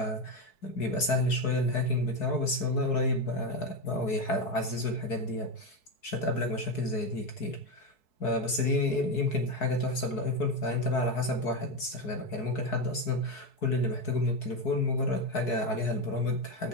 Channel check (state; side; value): late; right; 4.7 ms